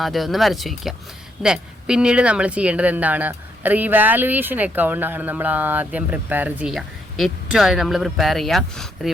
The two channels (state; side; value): normal; both; correlation 0.74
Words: ആദ്യം ഒന്ന് വരച്ച് വയ്ക്കുക. ദെൻ പിന്നീട് നമ്മൾ ചെയ്യേണ്ടത് എന്താണ്? റിവാലുവേഷൻ അക്കൗണ്ടാണ് നമ്മൾ ആദ്യം പ്രിപ്പയർ ചെയ്യുക. ഏറ്റവും ആദ്യം നമ്മൾ പ്രിപ്പയർ ചെയ്യുക